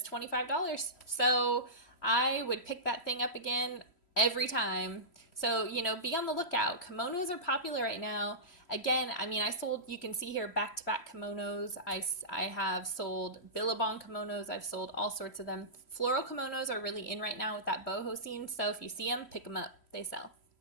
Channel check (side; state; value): right; late; 3.0 ms